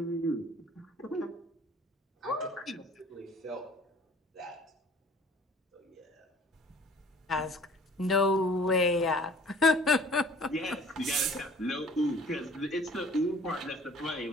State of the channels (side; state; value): both; normal; correlation 0.51